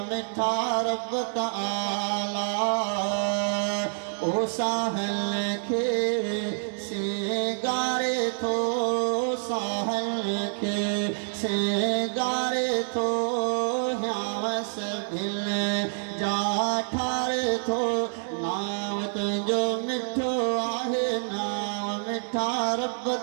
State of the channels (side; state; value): left; silent; digital silence